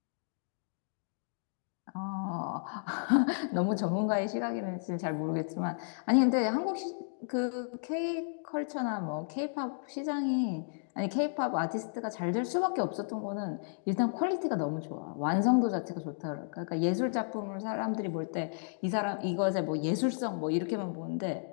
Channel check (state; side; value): silent; right; digital silence